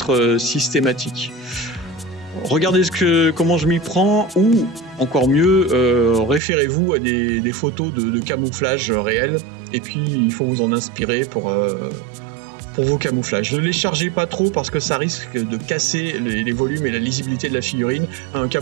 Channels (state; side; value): drops out; left; at 6.4 s